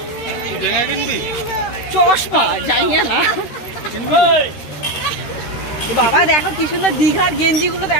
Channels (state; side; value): late; right; 13 ms